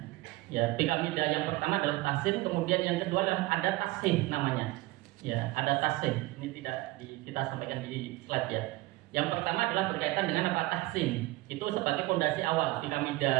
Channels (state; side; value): quieter; left; 19.7 dB